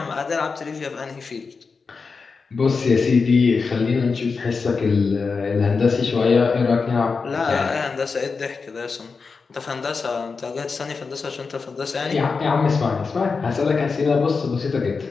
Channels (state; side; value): quieter; right; 4.8 dB